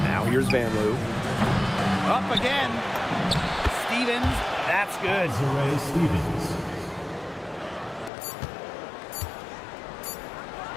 Now here's Van Leeuwen. Up again. Stevens, that's good. Desiree Stevens.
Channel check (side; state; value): right; drops out; at 8.1 s